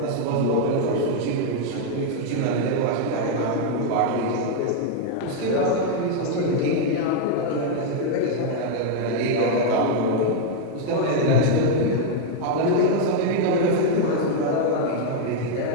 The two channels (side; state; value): both; different; correlation 0.00